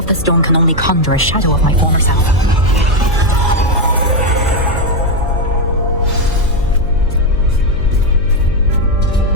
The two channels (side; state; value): left; noise; hum, 12 dB below the sound